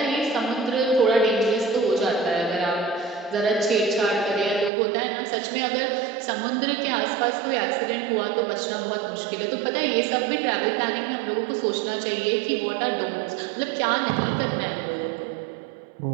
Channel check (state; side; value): drops out; left; at 4.7 s